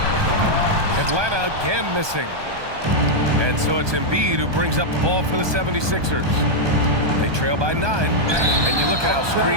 Atlanta again missing. And so it's Embiid who brings up the ball for the 76ers. They trail by 9. And you look at how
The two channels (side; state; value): left; late; 1.2 ms